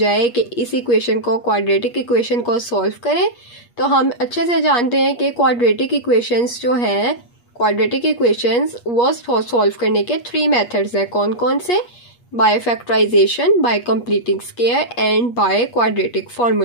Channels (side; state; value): right; late; 8.4 ms